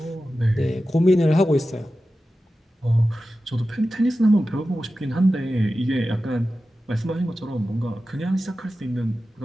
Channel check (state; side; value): normal; both; correlation 0.93